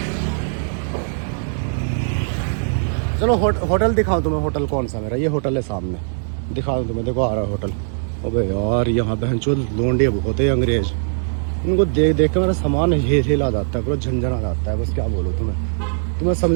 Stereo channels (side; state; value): left; silent; digital silence